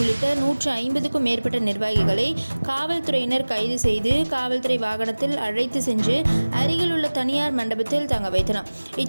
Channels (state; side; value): inverted; both; correlation -1.00